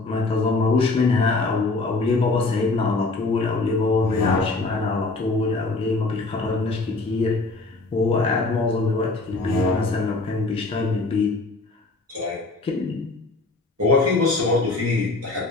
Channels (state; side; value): quieter; right; 3.4 dB